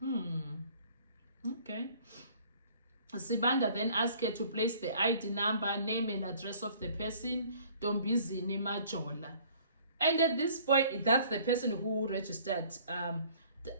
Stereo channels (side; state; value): both; inverted; correlation -0.55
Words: Okay. Sibanda then asked her to place the ID number, name and address of the person, Tombizini Majola. And at this point, that's the person who registered